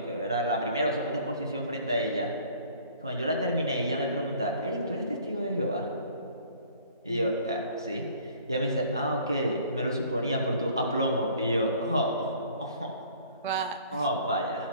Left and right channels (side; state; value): both; inverted; correlation -0.53